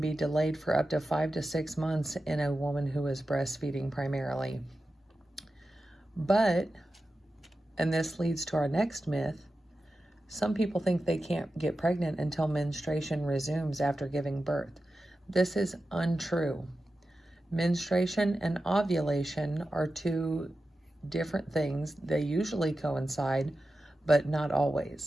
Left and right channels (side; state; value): both; normal; correlation 0.92